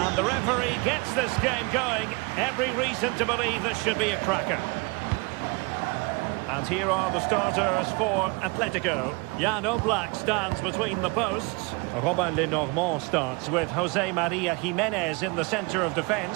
The referee gets this game going. Every reason to believe this should be a cracker. And here are the starters for Atletico. Jan Oblak stands between the posts. Robin Lenormand starts with Jose Maria Jimenez in the centre of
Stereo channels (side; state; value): left; quieter; 28.3 dB